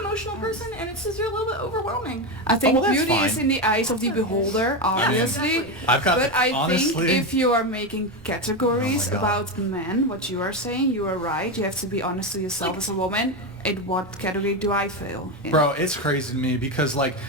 person, and it's just a little bit overwhelming. I think well, that's beauty is fine. in the eyes of the beholder, obviously. Exactly. I've got But I honestly, think if you are making categories Oh my God. about men, what you are saying, you are right. You have to be honest to yourself as a woman. In what category do I fail in? bro, it's crazy to me because like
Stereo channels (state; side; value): normal; both; correlation 0.13